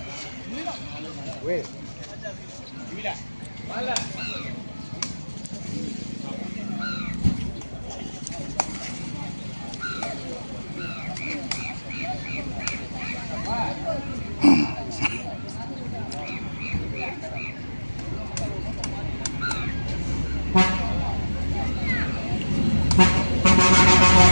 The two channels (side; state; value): both; inverted; correlation -1.00